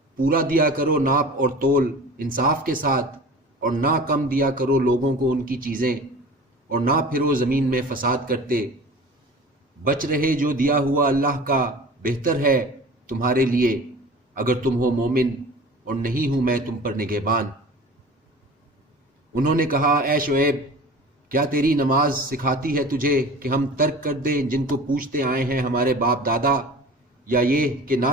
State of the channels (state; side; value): normal; both; correlation 0.39